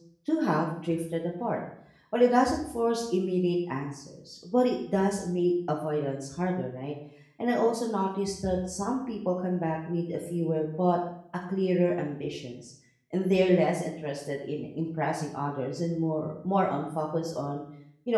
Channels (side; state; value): both; identical; correlation 1.00